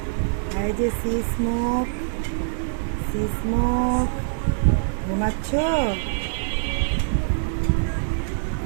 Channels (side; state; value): left; silent; digital silence